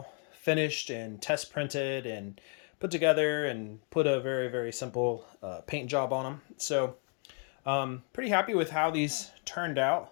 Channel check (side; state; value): right; quieter; 38.4 dB